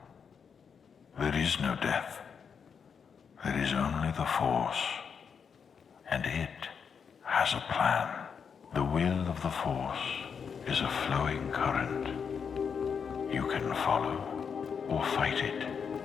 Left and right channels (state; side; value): quieter; right; 6.6 dB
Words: There is no death. There is only the Force. And it has a plan. The will of the Force is a flowing current. You can follow or fight it,